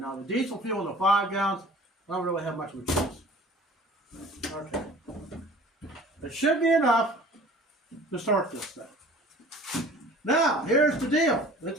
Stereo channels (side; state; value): both; normal; correlation 0.46